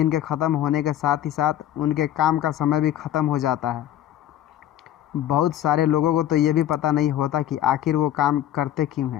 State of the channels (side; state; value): right; quieter; 12.0 dB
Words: के ख़त्म होने के साथ ही साथ उनके काम का समय भी ख़त्म हो जाता है। बहुत सारे लोगों को तो ये भी पता नहीं होता कि आखिर वो काम करते क्यों